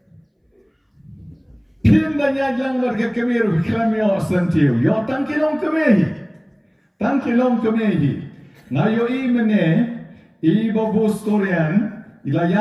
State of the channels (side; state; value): both; identical; correlation 1.00